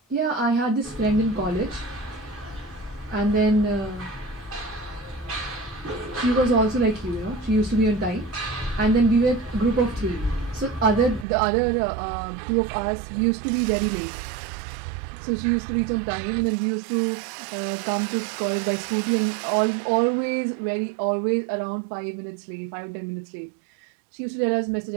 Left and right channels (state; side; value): drops out; left; at 11.2 s